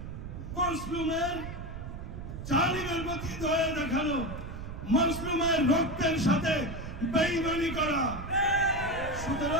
মজলুমের জালিমের প্রতি দয়া দেখানো, মজলুমের রক্তের সাথে বেঈমানি করা।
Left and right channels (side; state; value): right; noise; rumble, 8 dB below the sound